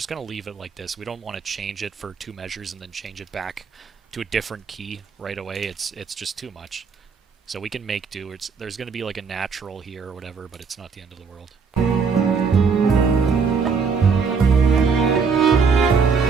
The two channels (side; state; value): left; quieter; 5.4 dB